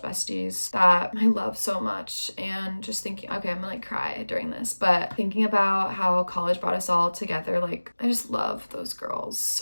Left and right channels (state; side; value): inverted; both; correlation -1.00